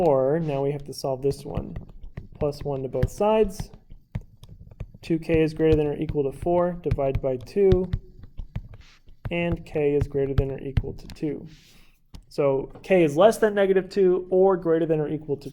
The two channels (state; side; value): identical; both; correlation 1.00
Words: now we have to solve this one. Plus 1 to both sides. 2k is greater than or equal to 4. Divide by 2. And k is greater than or equal to 2. So k is less than -2 or greater than or equal to